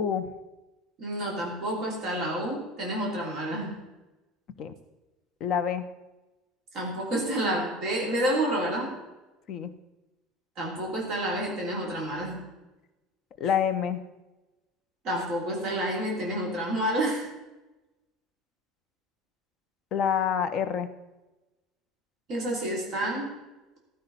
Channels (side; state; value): both; normal; correlation 0.32